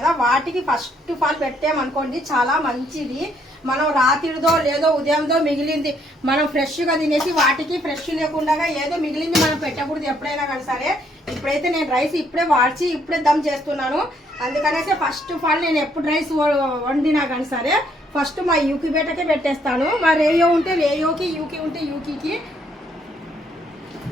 వాటికి ఫస్ట్ ఆఫ్ ఆల్ పెట్టామనుకోండి చాలా మంచిది. మనం రాత్రిదో లేదో ఉదయంతో మిగిలింది మనం ఫ్రెష్గా తినేసి వాటికి ఫ్రెష్ లేకుండా ఏదో మిగిలింది మనం పెట్టకూడదు ఎప్పుడైనా కానీ సరే. ఇప్పుడైతే నేను రైస్ ఇప్పుడే వాడ్చి ఇప్పుడే దమ్ చేస్తున్నాను. అందుకనేసి ఫస్ట్ ఆఫ్ ఆల్ నేను ఎప్పుడు రైస్ వండినా కానీ సరే ఫస్ట్ మా యూకి బేటకే పెట్టేస్తాను. మా రేయో ఉంటే రేయోకి, యూకి ఉంటే యూకి,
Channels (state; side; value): normal; both; correlation 0.69